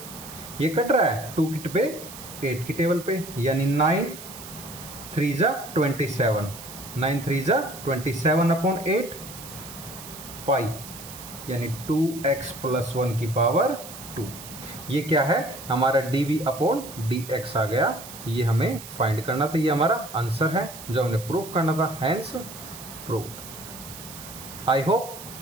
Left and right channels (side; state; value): right; noise; hiss, 14 dB below the sound